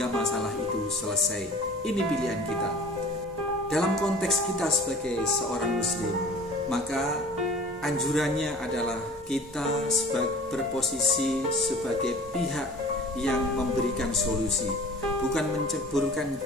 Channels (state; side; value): normal; both; correlation 0.46